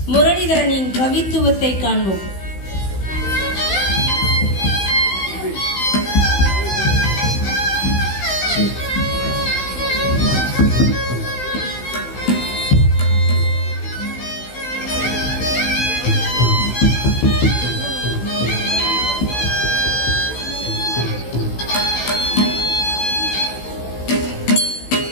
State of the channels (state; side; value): late; right; 16 ms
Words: முரளிதரனின் கவித்துவத்தை காண்போம்.